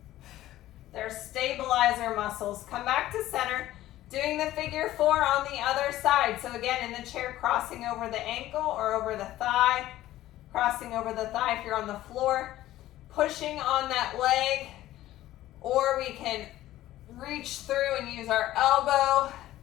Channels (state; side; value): quieter; right; 14.7 dB